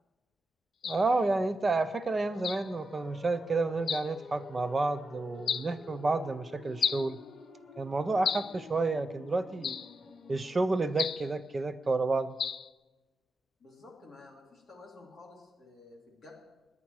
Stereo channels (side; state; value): both; normal; correlation 0.87